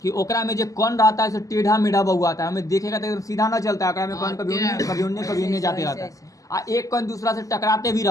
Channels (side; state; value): right; late; 0.16 ms